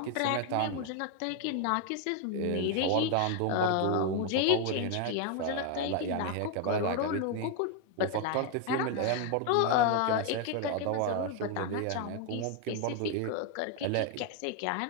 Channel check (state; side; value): different; both; correlation 0.01